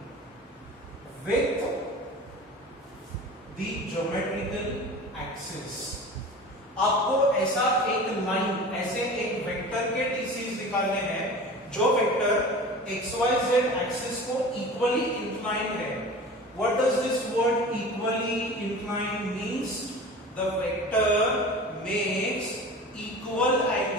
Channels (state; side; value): normal; both; correlation 0.37